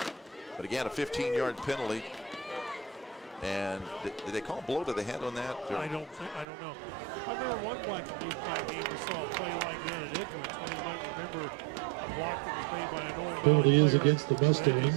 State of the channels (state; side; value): drops out; left; at 6.5 s